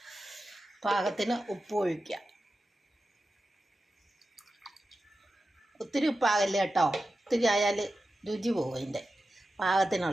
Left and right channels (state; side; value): normal; both; correlation 0.92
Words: പാകത്തിന് ഉപ്പ് ഒഴിക്കുക. ഒത്തിരി ഉപ്പാകല്ലേ കേട്ടോ, ഒത്തിരി ആയാൽ രുചി പോകും. അതിൻ്റെ